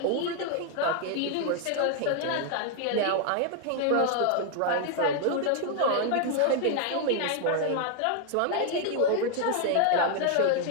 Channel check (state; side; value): different; both; correlation 0.00